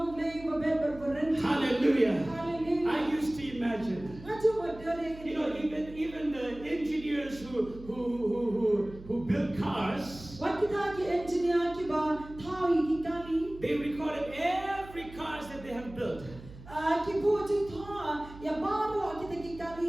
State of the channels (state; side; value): noise; right; hum, 17 dB below the sound